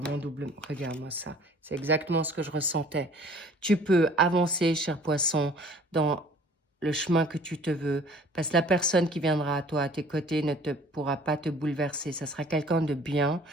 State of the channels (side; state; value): both; normal; correlation 0.52